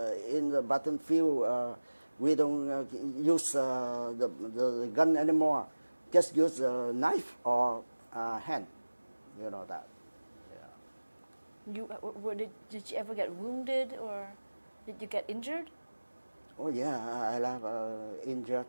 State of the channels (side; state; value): both; inverted; correlation -1.00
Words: in the battlefield, we don't use the gun anymore. Just use a knife or hand. You know that. Yeah. Did you ever get wounded or did you get injured? Oh yeah, I have